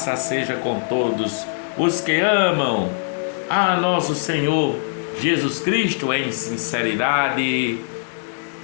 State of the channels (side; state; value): right; silent; digital silence